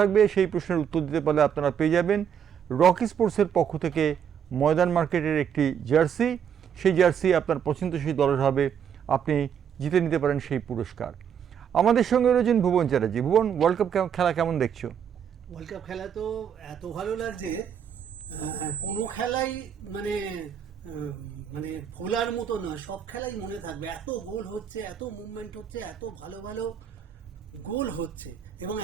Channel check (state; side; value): quieter; left; 8.2 dB